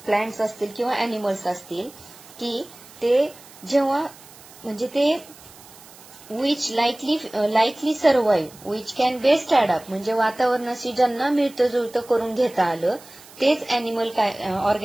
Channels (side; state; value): right; noise; hiss, 21 dB below the sound